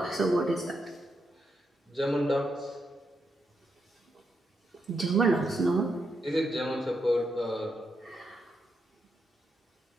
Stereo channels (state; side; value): normal; both; correlation 0.82